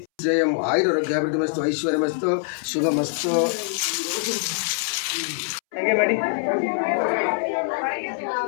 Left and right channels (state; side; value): silent; right; 63 dB below the other